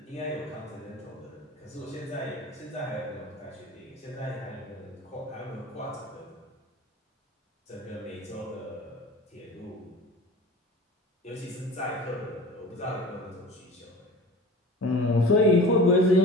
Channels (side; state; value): both; normal; correlation 0.39